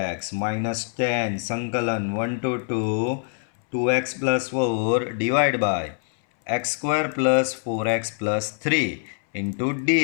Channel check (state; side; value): silent; right; 62 dB below the other